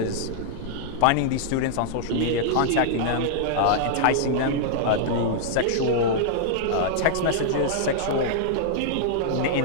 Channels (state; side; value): different; both; correlation -0.01